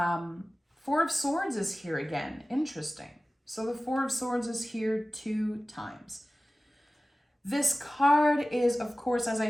of Swords is here again. Interesting. So the Four of Swords is here 2 times. This card is, of course, as I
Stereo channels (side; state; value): both; normal; correlation 0.97